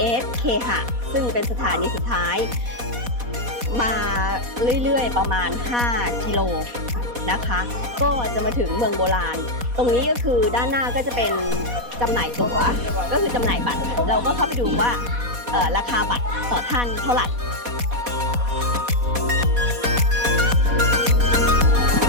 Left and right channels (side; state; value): left; late; 4.1 ms